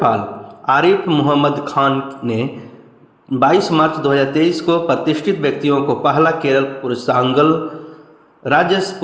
आरिफ मोहम्मद खान ने 22 मार्च 2023 को प्रतिष्ठित व्यक्तियों को पहला केरल पुष्पकांगल राज्य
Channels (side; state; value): both; identical; correlation 1.00